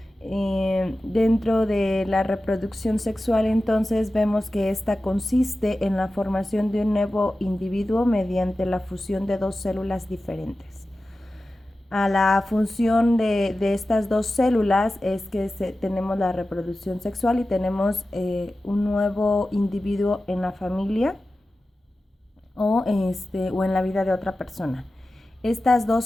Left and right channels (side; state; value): both; normal; correlation 0.94